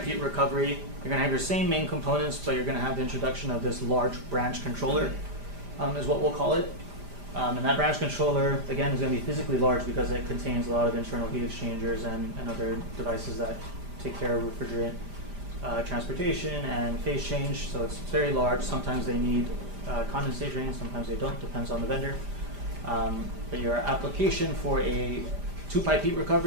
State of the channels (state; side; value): late; left; 5.0 ms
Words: heat recovery, you're going to have your same main components, but you're going to have the introduction of this large branch controller, is what we'll call it. And that branch controller, again, is going to be physically large because it contains a lot of internal heat exchangers and other devices that take care of refrigerant transportation and phase change. So it's very large. Sometimes they need condensate drains, sometimes they don't, depends on the vendor. But your application for a two-pipe heat